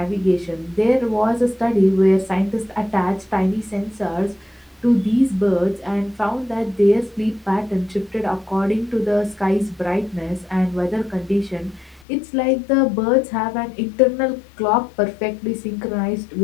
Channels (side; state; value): right; drops out; at 12.1 s